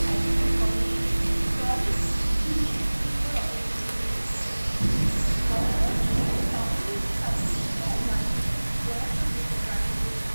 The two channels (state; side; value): inverted; both; correlation -1.00